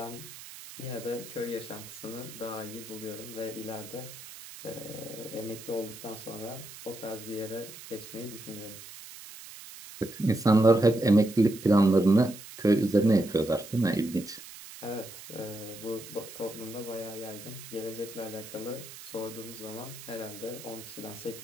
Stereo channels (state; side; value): noise; right; hiss, 15 dB below the sound